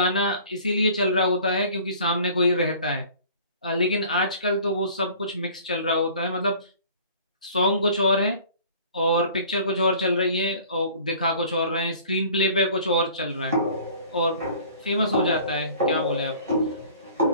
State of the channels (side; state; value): both; inverted; correlation -0.49